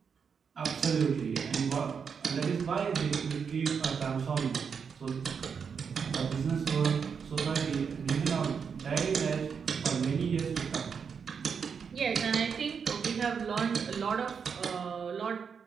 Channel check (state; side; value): quieter; left; 6.4 dB